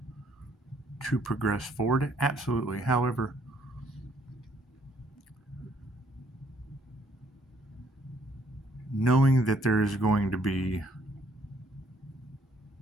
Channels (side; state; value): both; normal; correlation 0.66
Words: to progress forward? Absolutely. However, knowing that there is going to be